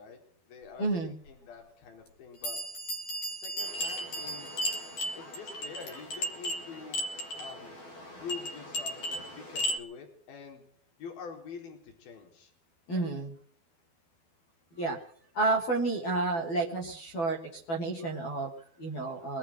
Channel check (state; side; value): late; right; 12 ms